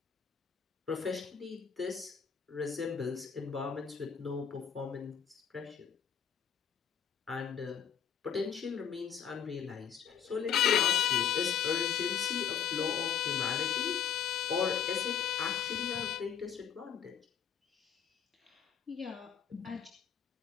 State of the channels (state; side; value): quieter; right; 8.1 dB